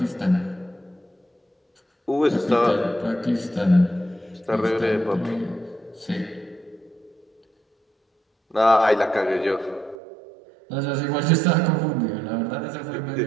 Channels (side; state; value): left; drops out; at 10.0 s